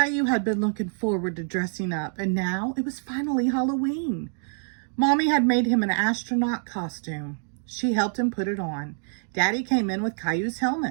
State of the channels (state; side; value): silent; left; digital silence